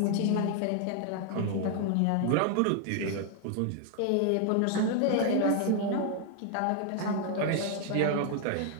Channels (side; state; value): both; different; correlation 0.00